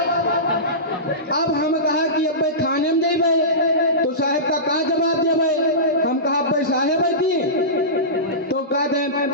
अब हम कहा कि अब भाई थाने में जाई भाई तो साहब का जवाब दे भाई हम कहा भाई साहब दी तो कहते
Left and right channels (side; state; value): both; normal; correlation -0.20